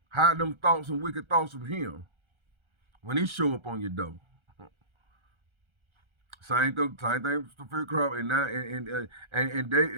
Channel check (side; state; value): left; late; 1.3 ms